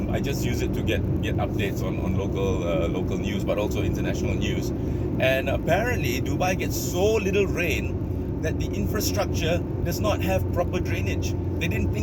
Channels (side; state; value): both; identical; correlation 1.00